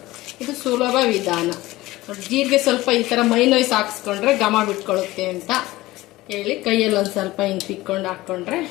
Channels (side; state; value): right; quieter; 18.3 dB